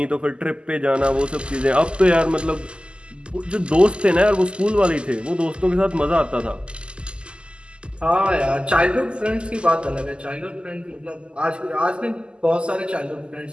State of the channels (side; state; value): left; late; 0.050 ms